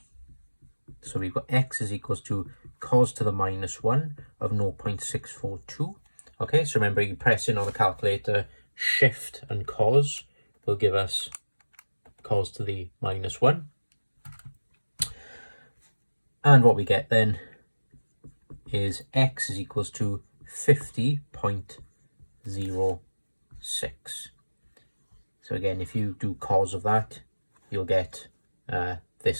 So we've got x is equals to cos to the minus 1 of 0.642. Okay, so remember, you press in on the calculator, shift and cos will give us cos to the minus 1. And what we get then is x is equals to 50.06. So again, if you do cos of that, you'll get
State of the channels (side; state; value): both; inverted; correlation -1.00